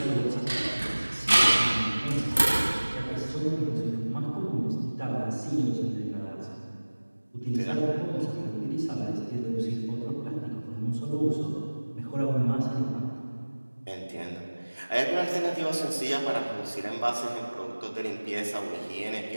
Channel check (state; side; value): inverted; both; correlation -1.00